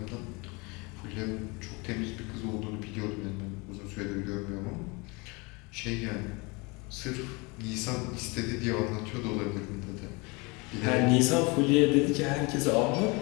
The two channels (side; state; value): right; quieter; 27.5 dB